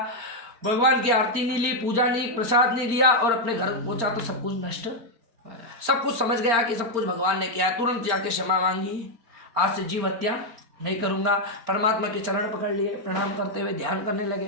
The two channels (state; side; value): late; left; 4.4 ms